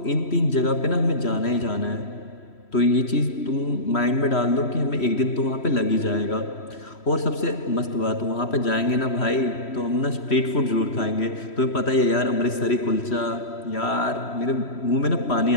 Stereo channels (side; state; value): right; late; 3.1 ms